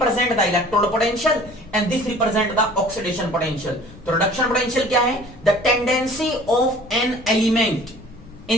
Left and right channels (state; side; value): noise; left; rumble, 20 dB below the sound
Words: the electrode potential and this represent the oxidation potential. तो रिडक्शन पोटेंशियल क्या है? The tendency of an element